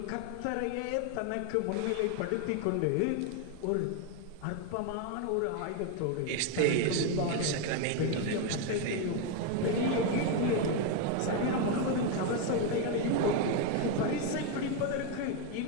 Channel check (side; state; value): both; different; correlation 0.02